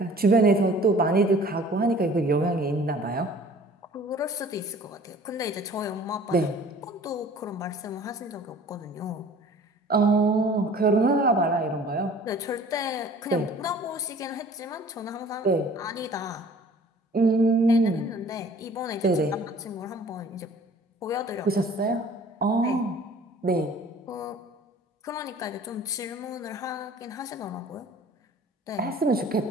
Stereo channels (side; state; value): both; normal; correlation 0.49